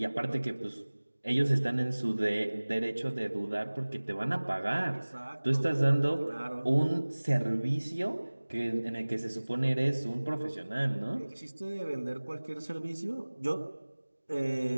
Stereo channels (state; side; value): inverted; both; correlation -1.00